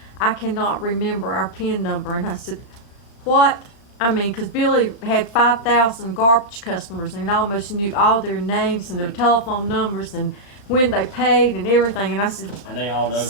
I cannot remember our PIN number. And I said, what? I mean, because Billy had 5,000 garbage customers and almost knew all their names and their telephone numbers and when they paid and everything. And I said, And they all know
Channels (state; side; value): late; right; 36 ms